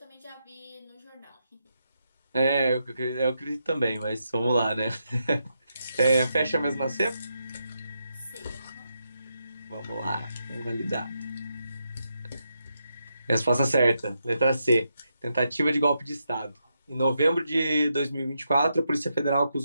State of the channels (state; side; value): inverted; both; correlation -0.83